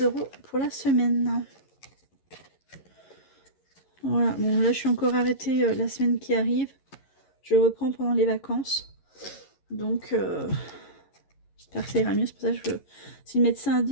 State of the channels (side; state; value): right; late; 11 ms